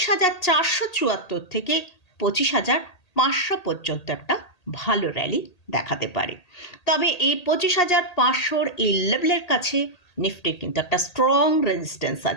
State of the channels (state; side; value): late; right; 1.8 ms